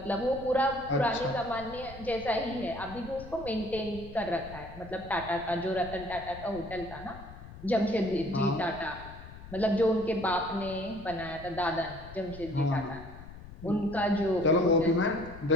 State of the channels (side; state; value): left; noise; rumble, 15 dB below the sound